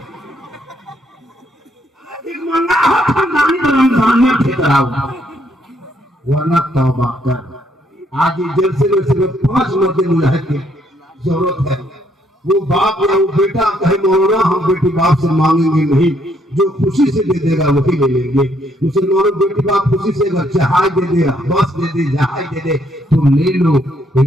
मंगा हो, खानदानी रमजान में ठेकरा वरना तौबा कर। आज जलसे में सिर्फ 5 मर्द मुजाहिद की जरूरत है। वो बाप या वो बेटा कहे मौलाना हम बेटी बाप से मांगेंगे नहीं, जो खुशी से दे देगा वही ले लेंगे। मुसलमानों बेटी बाप खुशी से अगर जहाज दे दे, बस दे दे, जहाज दे दे तो ले लो,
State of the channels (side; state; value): both; normal; correlation 0.71